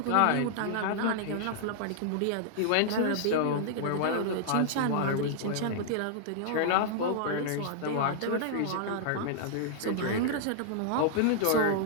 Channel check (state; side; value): different; both; correlation -0.01